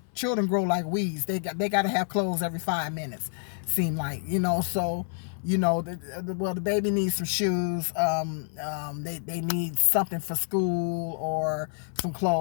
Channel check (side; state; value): right; silent; 59 dB below the other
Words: children grow like weeds, they got to have clothes every 5 minutes, seem like, so, the baby needs some shoes, they need something for school or some